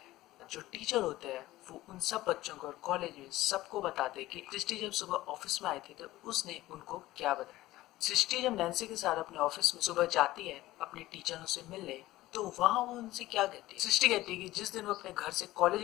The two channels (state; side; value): quieter; right; 16.8 dB